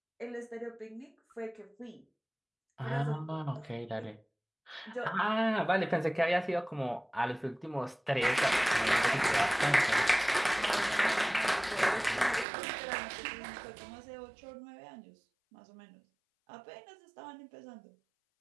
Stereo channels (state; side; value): drops out; left; at 12.5 s